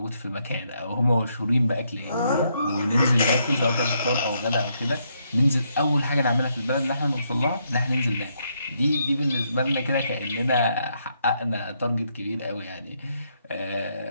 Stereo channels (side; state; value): both; inverted; correlation -0.76